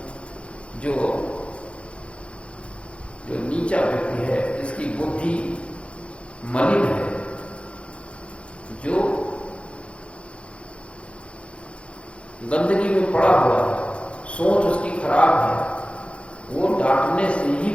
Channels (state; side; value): late; right; 0.060 ms